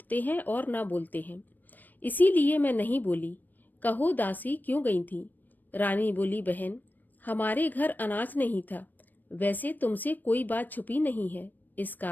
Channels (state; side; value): late; right; 0.089 ms